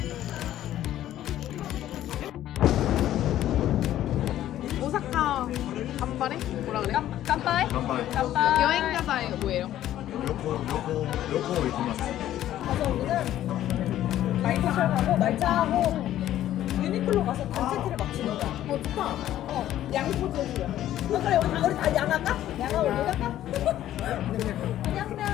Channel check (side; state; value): right; quieter; 12.7 dB